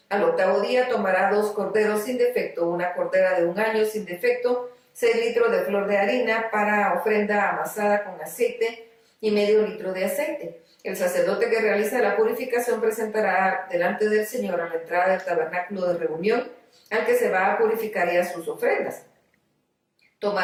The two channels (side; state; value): both; identical; correlation 1.00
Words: Al 8º día tomará 2 corderos sin defecto, una cordera de 1 año sin defecto, 6 litros de flor de harina para ofrenda amasada con aceite y medio litro de aceite. El sacerdote que realiza la purificación presentará delante del Señor a la entrada del tabernáculo de reunión al que se va a purificar y a sus ofrendas.